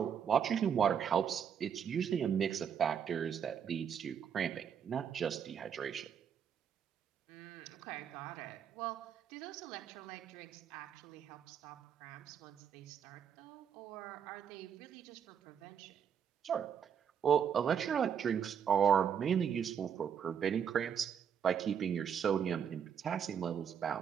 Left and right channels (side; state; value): left; quieter; 7.9 dB